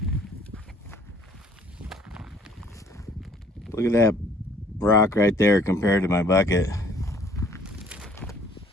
Look at that rock right there compared to my bucket.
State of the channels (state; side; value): normal; both; correlation 0.58